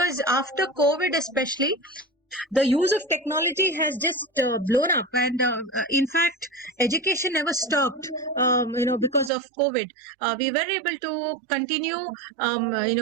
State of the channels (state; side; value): drops out; left; at 9.3 s